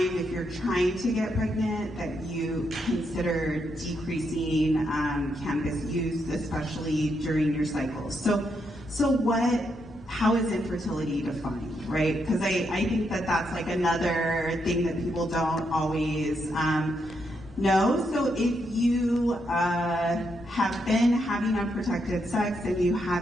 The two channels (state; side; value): normal; both; correlation 0.80